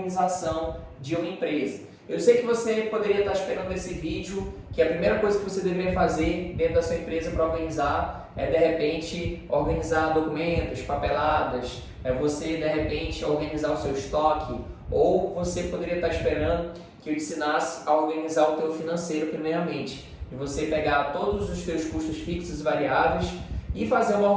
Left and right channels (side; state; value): both; identical; correlation 1.00